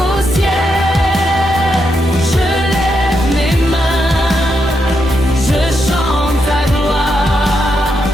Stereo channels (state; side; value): normal; both; correlation 0.82